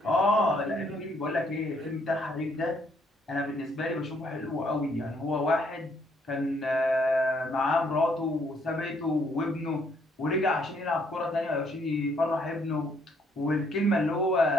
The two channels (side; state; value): both; normal; correlation 0.68